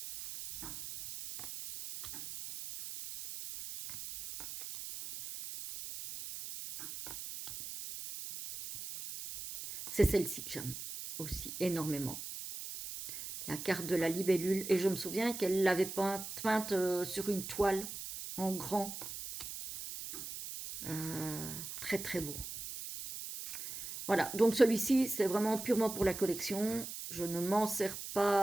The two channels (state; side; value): noise; right; hiss, 9 dB below the sound